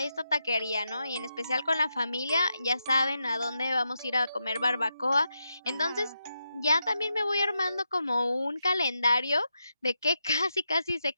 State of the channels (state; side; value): inverted; both; correlation -0.86